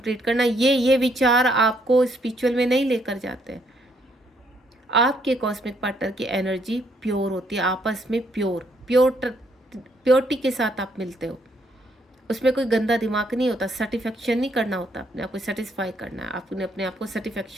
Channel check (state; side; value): normal; both; correlation 0.71